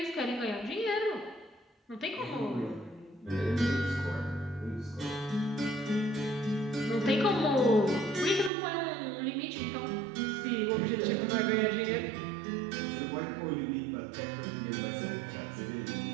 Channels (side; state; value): left; drops out; at 8.5 s